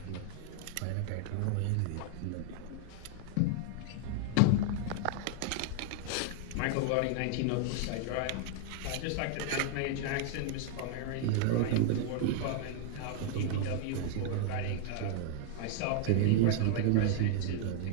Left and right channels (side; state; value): both; different; correlation 0.00